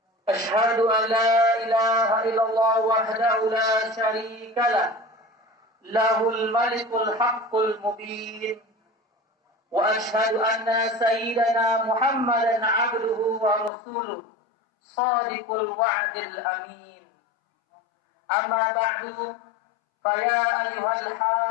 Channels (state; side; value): drops out; right; at 13.7 s